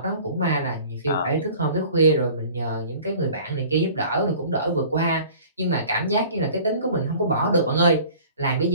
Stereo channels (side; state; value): both; inverted; correlation -0.47